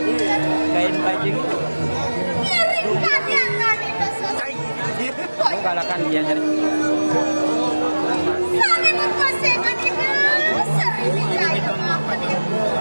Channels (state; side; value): inverted; both; correlation -1.00